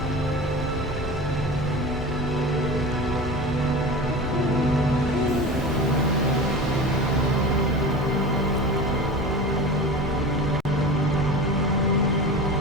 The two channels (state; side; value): normal; both; correlation 0.31